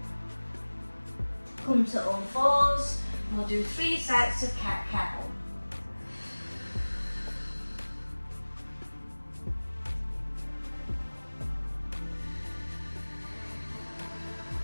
Come to all fours. We'll do 3 sets of cat-cow.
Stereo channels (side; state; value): both; inverted; correlation -1.00